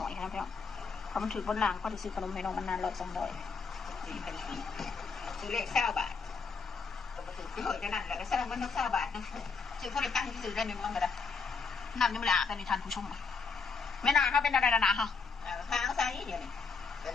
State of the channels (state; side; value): quieter; right; 4.9 dB